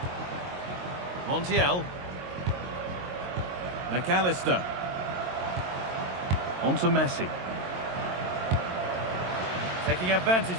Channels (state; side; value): late; left; 22 ms